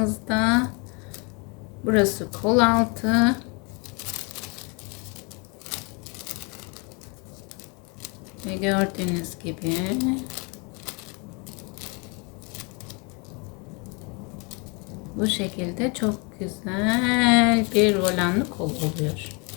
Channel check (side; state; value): right; quieter; 31.9 dB